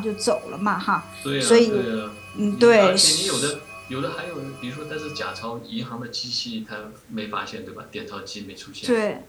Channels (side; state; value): both; identical; correlation 1.00